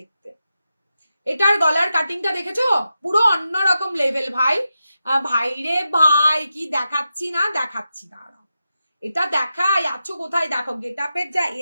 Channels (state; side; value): inverted; both; correlation -0.89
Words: এটার গলার কাটিংটা দেখেছো, পুরো অন্যরকম লেভেল ভাই, ভাই রে ভাই, কি দেখাচ্ছি না দেখাচ্ছি না, এটা দেখাই আছো কোথায়, দেখো গেটআপের যা